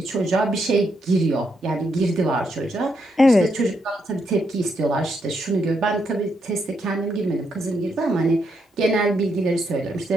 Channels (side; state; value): both; normal; correlation 0.79